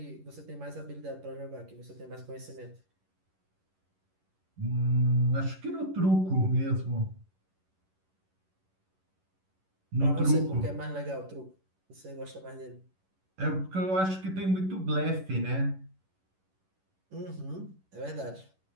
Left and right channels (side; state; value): left; late; 11 ms